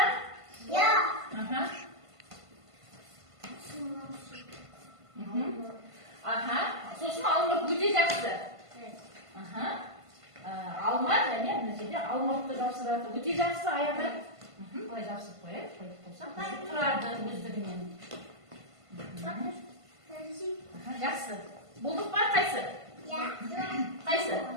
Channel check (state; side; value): late; left; 1.5 ms